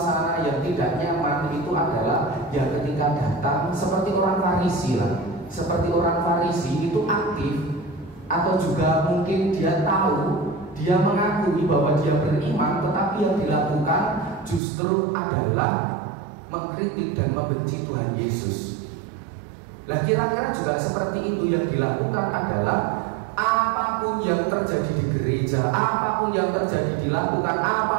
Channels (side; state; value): left; drops out; at 14.6 s